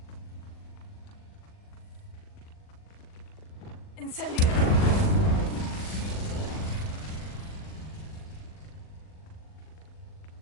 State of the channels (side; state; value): right; late; 40 ms